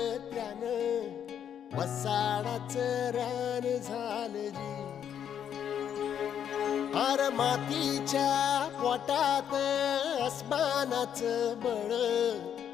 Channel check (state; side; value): quieter; right; 9.0 dB